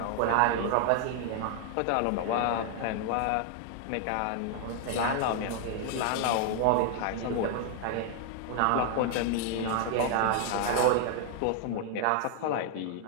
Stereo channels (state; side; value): different; both; correlation 0.00